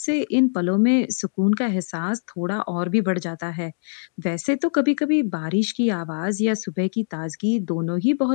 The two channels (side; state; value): right; silent; digital silence